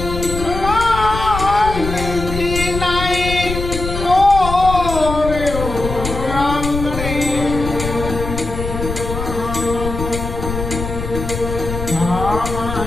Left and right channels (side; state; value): left; noise; rumble, 6 dB below the sound